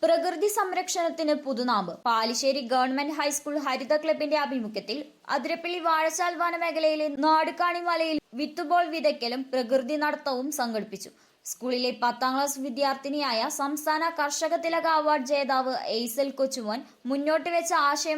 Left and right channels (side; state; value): both; identical; correlation 1.00